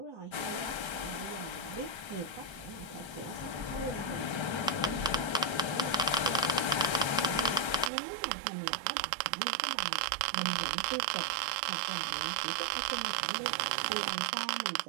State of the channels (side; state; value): left; drops out; at 7.9 s